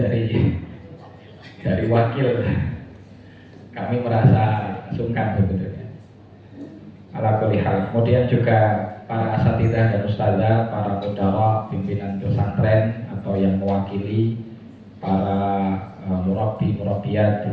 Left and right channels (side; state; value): both; identical; correlation 1.00